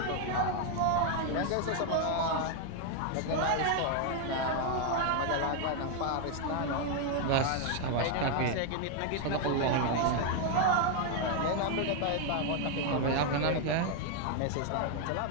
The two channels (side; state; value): both; different; correlation 0.01